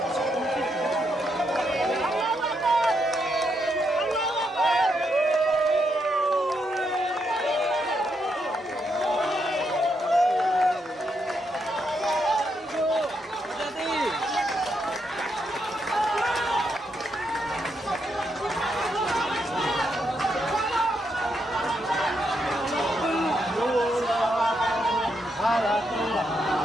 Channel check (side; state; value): both; normal; correlation 0.80